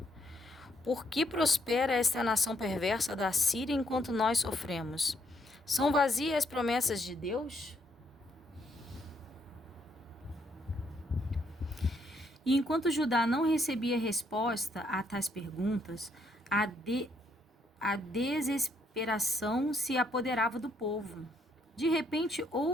Por que prospera esta nação perversa da Síria enquanto nós sofremos? São vazias as promessas de Deus? E enquanto Judá não recebia resposta a tais perguntas, a desesperação se apoderava do povo. De repente,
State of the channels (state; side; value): normal; both; correlation 0.72